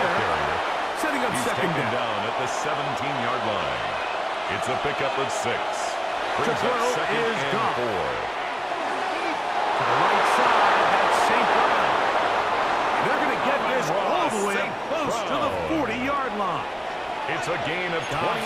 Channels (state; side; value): identical; both; correlation 1.00